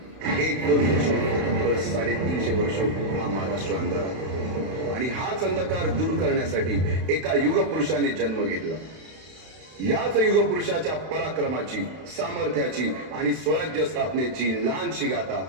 1-2 वर्ष 350 वर्ष हा महाराष्ट्र अंधारात, आणि हाच अंधकार दूर करण्यासाठी एका युगपुरुषाने जन्म घेतला। याच युगपुरुषाच्या पराक्रमाची, सामर्थ्याची आणि स्वराज्य स्थापनेची लहानशी गाथा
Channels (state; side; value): late; left; 31 ms